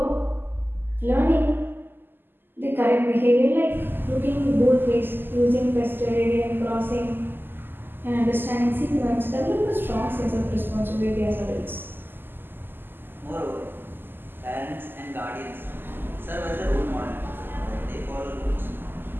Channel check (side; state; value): left; late; 0.096 ms